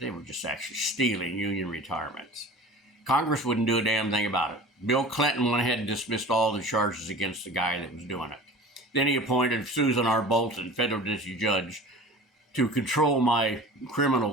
were just actually stealing union retirements. Congress wouldn't do a damn thing about it. Bill Clinton went ahead and dismissed all the charges against the guy that was doing it. Then he appointed Susan R. Bolton, federal district judge, to control my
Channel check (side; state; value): both; normal; correlation 0.39